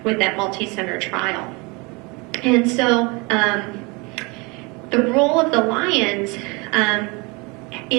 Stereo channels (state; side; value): quieter; left; 27.7 dB